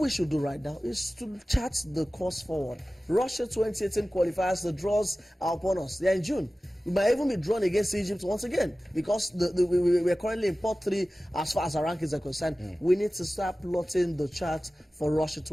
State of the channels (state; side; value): normal; both; correlation 0.96